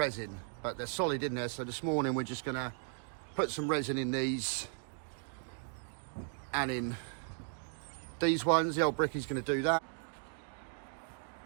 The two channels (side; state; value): left; silent; 53 dB below the other